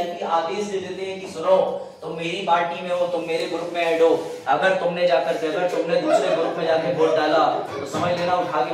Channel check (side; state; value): both; identical; correlation 1.00